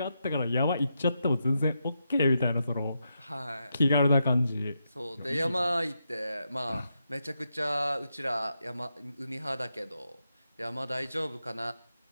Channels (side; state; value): both; inverted; correlation -0.85